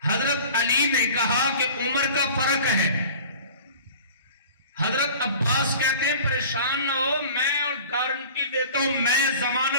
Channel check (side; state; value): both; inverted; correlation -0.43